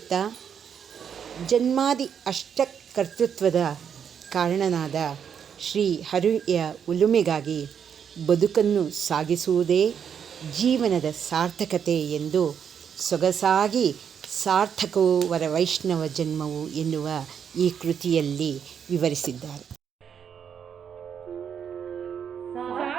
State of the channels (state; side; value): quieter; left; 7.8 dB